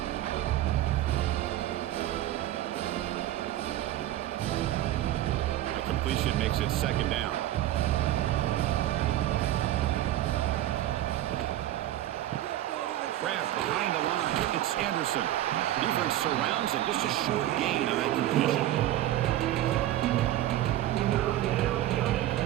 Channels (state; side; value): quieter; left; 13.7 dB